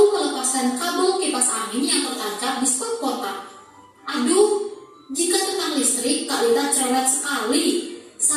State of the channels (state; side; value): identical; both; correlation 1.00